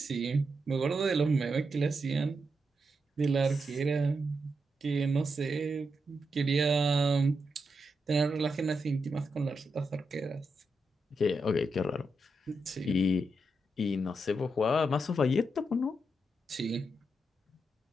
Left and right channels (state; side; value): normal; both; correlation 0.85